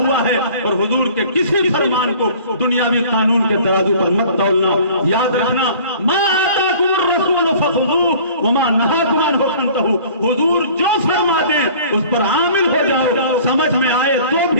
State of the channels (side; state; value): both; inverted; correlation -0.48